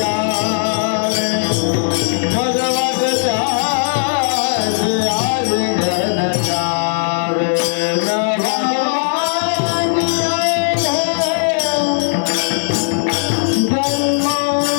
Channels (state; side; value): silent; right; 63 dB below the other